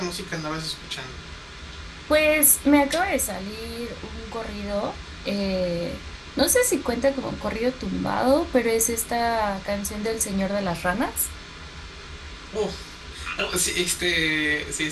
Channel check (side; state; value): both; identical; correlation 1.00